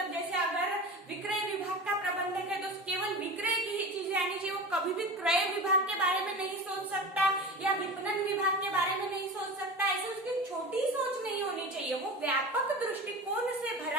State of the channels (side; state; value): both; normal; correlation 0.30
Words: जैसे अगर विक्रय विभाग का प्रबंधक है तो केवल विक्रय की ही चीजें आनी चाहिए, वो कभी भी क्रय विभाग के बारे में नहीं सोच सकता या विपणन विभाग के बारे में नहीं सोच सकता। ऐसे उसकी छोटी सोच नहीं होनी चाहिए, वो व्यापक दृष्टिकोण से